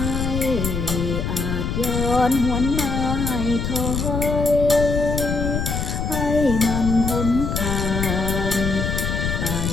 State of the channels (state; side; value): noise; left; rumble, 2 dB below the sound